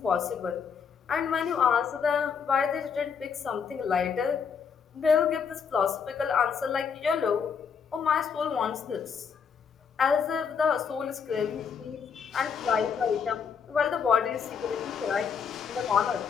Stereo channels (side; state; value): right; quieter; 6.5 dB